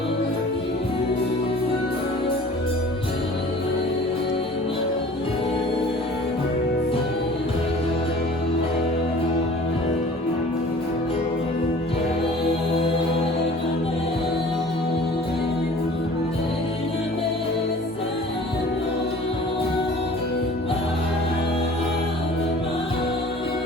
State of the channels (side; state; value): both; normal; correlation 0.46